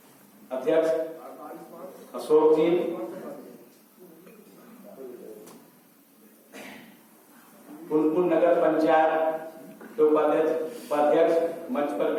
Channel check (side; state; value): both; identical; correlation 1.00